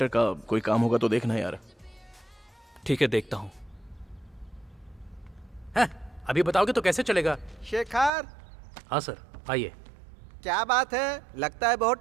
का कोई काम होगा तो देखना यार। ठीक है, देखता हूँ। हैं? अभी बताओगे तो कैसे चलेगा? शेखर, हाँ सर, आइए। क्या बात है? लगता है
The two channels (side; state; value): left; drops out; at 8.1 s